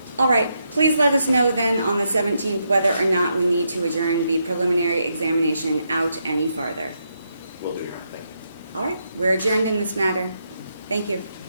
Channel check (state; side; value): inverted; both; correlation -0.80